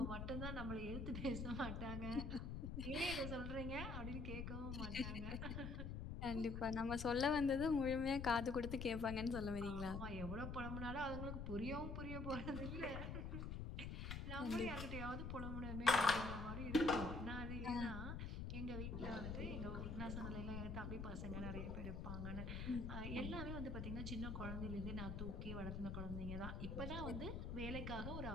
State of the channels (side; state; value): left; noise; rumble, 4 dB below the sound